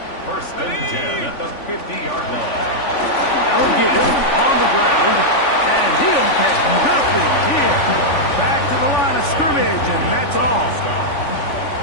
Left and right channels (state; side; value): late; right; 3.5 ms